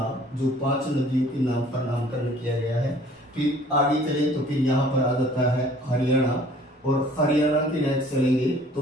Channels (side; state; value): both; normal; correlation 0.53